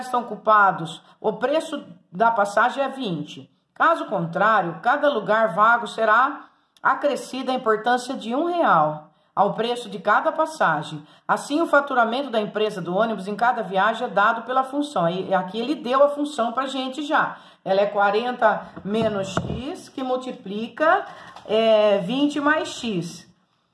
estão ocupados, o preço da passagem é 20. Caso contrário, cada lugar vago será acrescida a importância de R$1 ao preço de cada passagem. Assim, o faturamento da empresa do ônibus em cada viagem é dado pela função. E aqui ele deu a função para a gente já. Ela é 40 menos X, que multiplica 20 mais X.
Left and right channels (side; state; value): both; identical; correlation 1.00